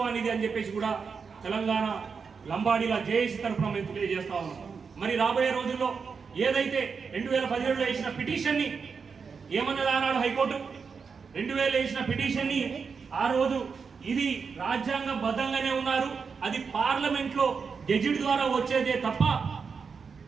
అని చెప్పేసి కూడా తెలంగాణ లంబాడీల జేఏసీ తరఫున మేము తెలియజేస్తా ఉన్నాం. మరి రాబోయే రోజుల్లో ఏదైతే 2017లో వేసిన పిటిషన్ని ఏమన్నది ఆనాడు హైకోర్టు, 2000 వేసిన పిటిషన్ని ఆ రోజు ఇది రాజ్యాంగబద్ధంగానే ఉన్నారు, అది పార్లమెంట్లో గెజిట్ ద్వారా వచ్చేదే తప్ప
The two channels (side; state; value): left; quieter; 5.6 dB